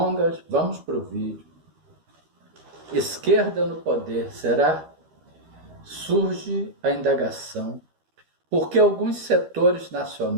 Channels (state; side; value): late; left; 13 ms